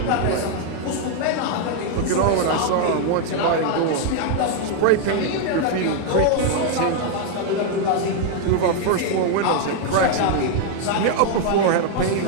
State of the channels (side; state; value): both; different; correlation 0.00